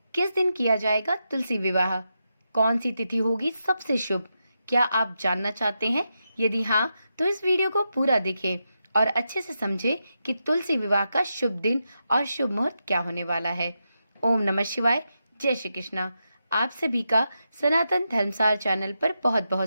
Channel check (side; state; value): both; inverted; correlation -0.86